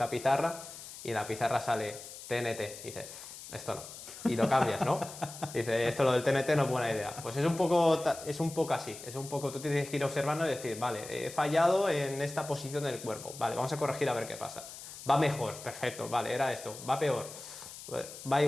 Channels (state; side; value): noise; left; hiss, 13 dB below the sound